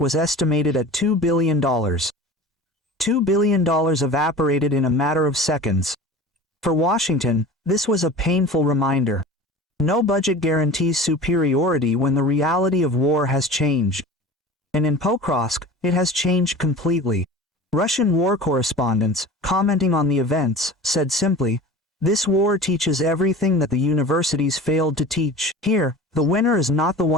was estimated at $2 billion. $2 billion evaporated in a matter of seconds. For Washington, this was a painful reminder. No budget guarantees superiority when the reality of war has changed. And in Покровск, it has changed completely. Russian war correspondents, commenting on the events, said simply, "This war teaches everything that the universities failed to teach. Here, the winner is not the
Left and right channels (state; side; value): normal; both; correlation 0.37